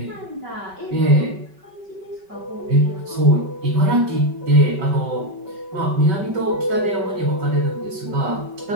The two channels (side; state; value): left; late; 5.2 ms